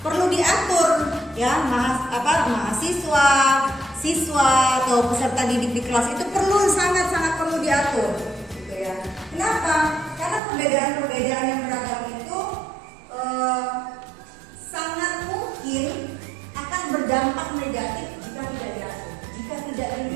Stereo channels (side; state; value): left; drops out; at 10.4 s